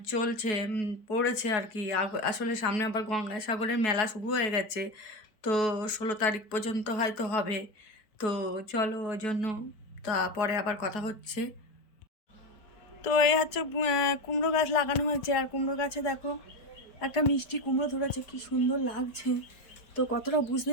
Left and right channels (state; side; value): late; right; 4.7 ms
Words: চলছে, পড়েছে আর কি। আসলে সামনে আবার গঙ্গাসাগরের মেলা শুরু হয়ে গেছে, তো 16 তারিখ পর্যন্ত হয়তো হবে। তো চলো, ওই জন্য তারপরে আবার কথা হচ্ছে। তো এই হচ্ছে কুমড়ো গাছ লাগানো হয়েছে, আর কুমড়ো গাছে দেখো একটা মিষ্টি কুমড়ো ধরেছে, কি সুন্দর লাগছে। তো কতটা